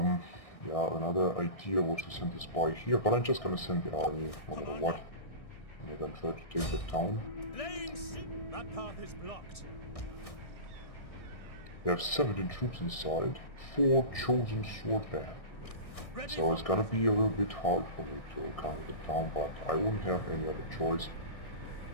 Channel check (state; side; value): late; right; 1.6 ms